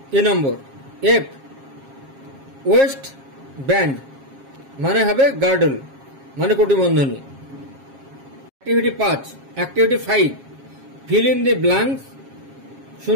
এ নম্বর, এফ ওয়েস্ট ব্যান্ড মানে হবে গার্ডল, মানে কটিবন্ধনী। Activity 5, fill in the blanks,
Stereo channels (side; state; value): left; late; 7.4 ms